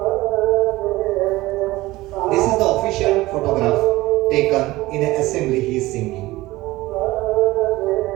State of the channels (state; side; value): quieter; left; 18.7 dB